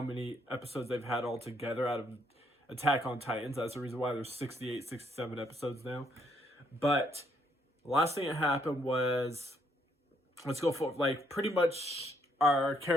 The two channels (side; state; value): both; normal; correlation 0.71